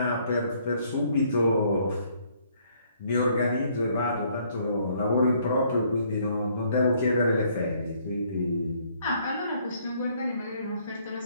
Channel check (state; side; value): inverted; both; correlation -0.66